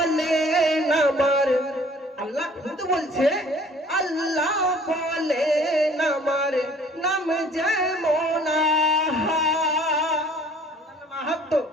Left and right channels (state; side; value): normal; both; correlation 0.54